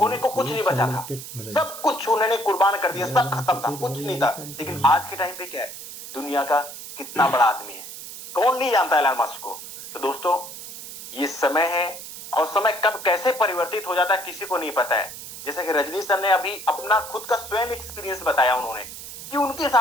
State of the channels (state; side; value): noise; right; hiss, 12 dB below the sound